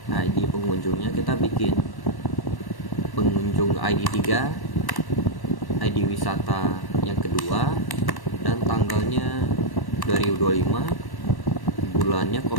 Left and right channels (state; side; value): late; right; 1.1 ms